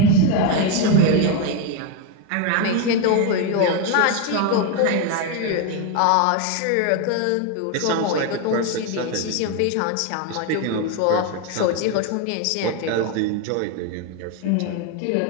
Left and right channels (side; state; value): both; different; correlation 0.02